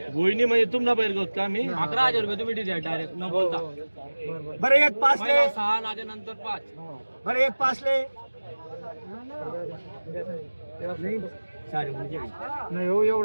गोईनी म्हणजे तुमला बैल गोत का मी 11,000 रुपये तुम्ही दिले डायरेक्ट न बोलता. बरं 1.5 ले 6 नाजे नंतर 5 बरं 1.5 ले नाही हो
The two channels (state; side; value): inverted; both; correlation -1.00